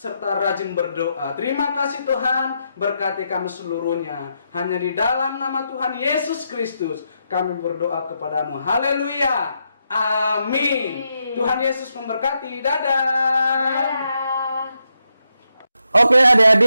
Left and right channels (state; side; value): inverted; both; correlation -0.82